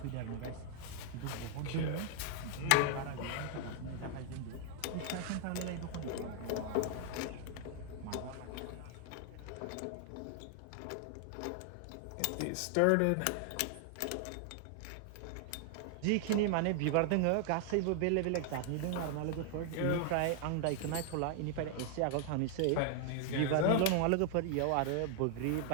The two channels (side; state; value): both; different; correlation 0.00